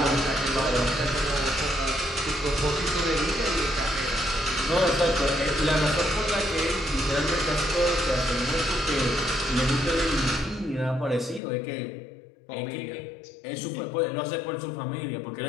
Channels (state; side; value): drops out; right; at 11.4 s